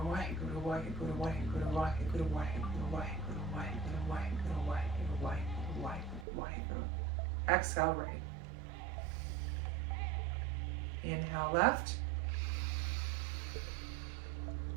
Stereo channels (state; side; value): drops out; left; at 6.2 s